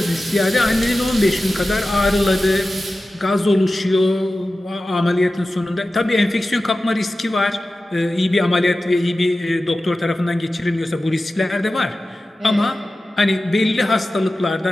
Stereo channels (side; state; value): both; normal; correlation 0.95